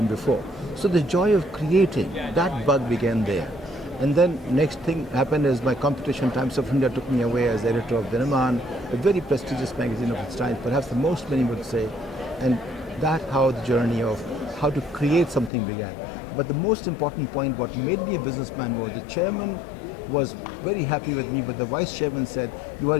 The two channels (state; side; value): drops out; right; at 15.5 s